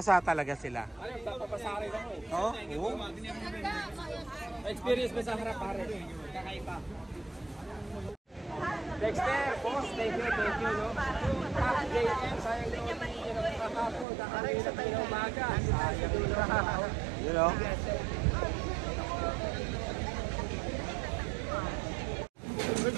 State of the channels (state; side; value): drops out; left; at 14.1 s